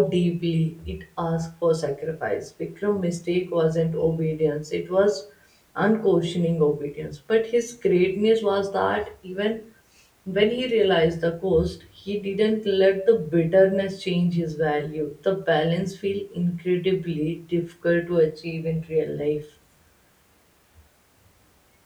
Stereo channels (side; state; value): both; identical; correlation 1.00